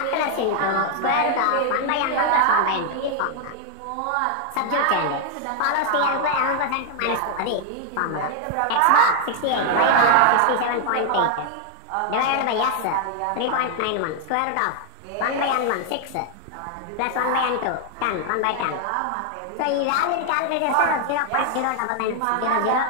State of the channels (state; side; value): different; both; correlation 0.00